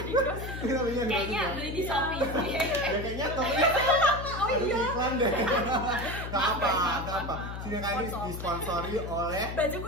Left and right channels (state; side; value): noise; left; hum, 7 dB below the sound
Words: di grosir. Kita belinya grosir. Kayaknya beli di Shopee. Ya kayaknya tokonya ada iklan deh. Gak apa. Sini kali disponsori oleh Baju